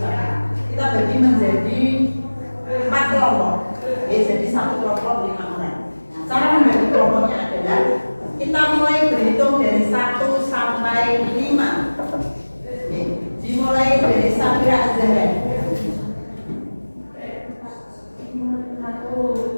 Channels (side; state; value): both; inverted; correlation -1.00